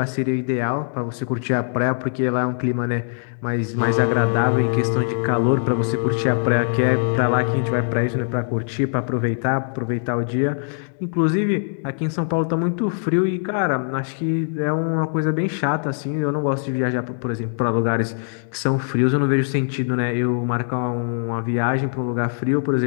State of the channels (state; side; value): silent; right; digital silence